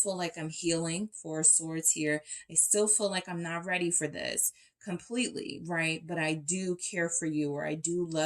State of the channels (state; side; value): identical; both; correlation 1.00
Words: like I'm healing, Four of Swords here. I still feel like I'm not ready for this completely, right? But I do care for you, or I do